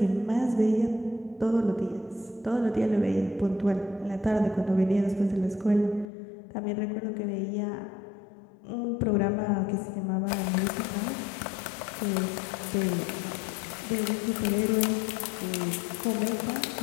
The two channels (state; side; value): drops out; right; at 6.1 s